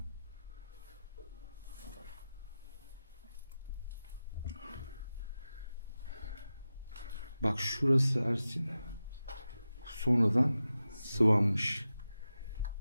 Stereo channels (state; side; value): inverted; both; correlation -0.93